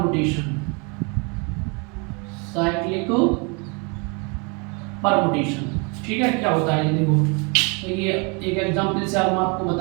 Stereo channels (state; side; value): quieter; left; 32.5 dB